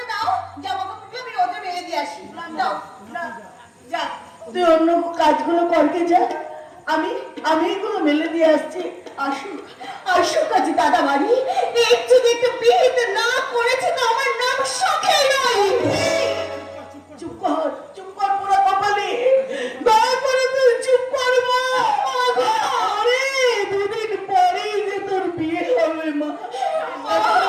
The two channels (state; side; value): identical; both; correlation 1.00